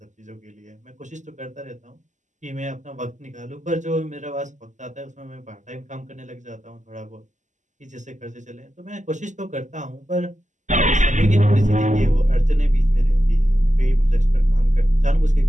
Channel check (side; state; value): left; late; 0.35 ms